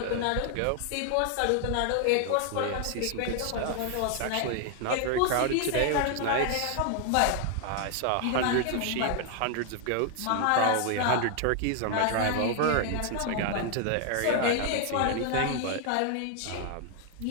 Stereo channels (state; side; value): different; both; correlation 0.00